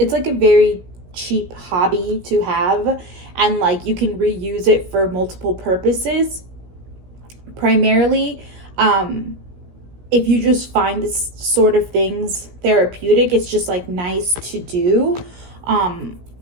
like a very cheap hobby to have, and like you can reuse it for multiple purposes. Primarily, if you just find this sort of things therapeutic, it's just like nice to do,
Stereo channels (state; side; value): late; left; 17 ms